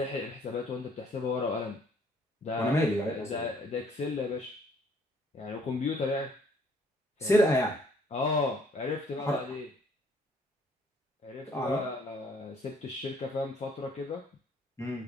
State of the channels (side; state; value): both; normal; correlation 0.62